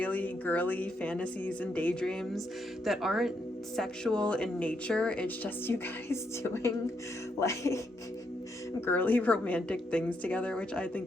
girly fantasies and daydreams that aren't sexual in nature. It's just you guys doing like girly romantic things together, which I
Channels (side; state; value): both; normal; correlation 0.78